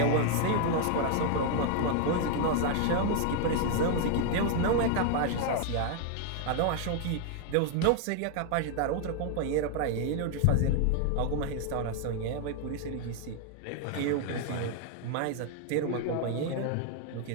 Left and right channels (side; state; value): both; different; correlation 0.00